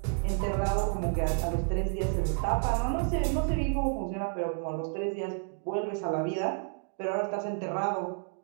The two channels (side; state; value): left; quieter; 39.3 dB